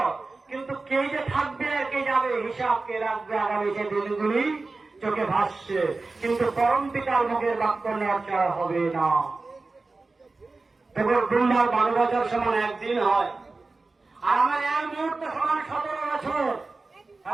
কিন্তু কে যে থাকবে আর কে যাবে হিসাব কে রাখবে আগামী সে দিনগুলি চোখে ভাসছে। কিন্তু পরম পিতার মুখের বাক্য নড়চড় হবে না। তবে দুর্বার 12 বছর সমান একদিন হয়, আর আমার এক মুহূর্ত সমান 17 বছর।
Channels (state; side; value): quieter; left; 3.6 dB